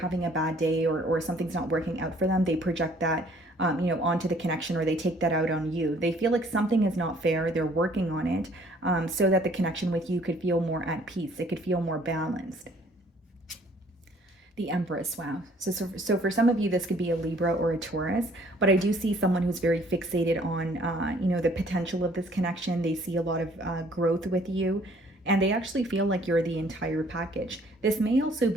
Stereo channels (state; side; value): normal; both; correlation 0.59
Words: a bad day, or something's not working out for them, they project that onto the connection, or they take that out on you. They feel like something is not fair. They're working on it, so that the connection with you could feel more at peace. It could feel more balanced. The Empress, wow. So for some of you, this could be a Libra or a Taurus, but I do see someone who's very fixated on, the potential of this connection. They see a lot of growth with you, and they actually feel like you're the entire package. This may also